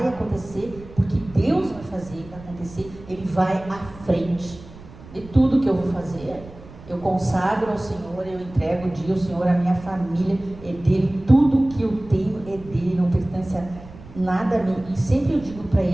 acontecer, porque Deus vai fazer acontecer, Ele vai à frente de tudo que eu vou fazer. Eu consagro ao Senhor, eu entrego o dia ao Senhor, a minha família é dele, tudo que eu tenho é dele, não pertence a nada a mim. E sempre eu digo para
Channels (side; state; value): right; noise; rumble, 18 dB below the sound